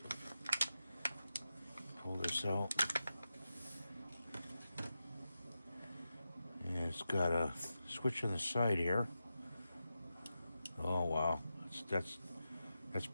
Pull this out. And it's got a switch on the side here. Oh wow, that's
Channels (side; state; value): both; inverted; correlation -0.90